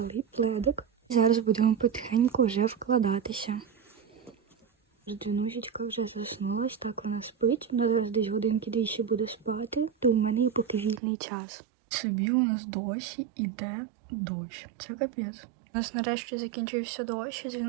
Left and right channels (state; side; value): drops out; left; at 11.0 s